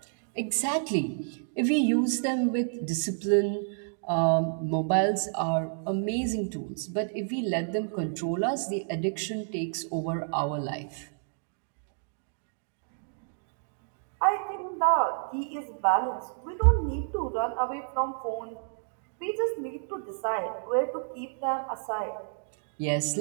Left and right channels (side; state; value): left; silent; digital silence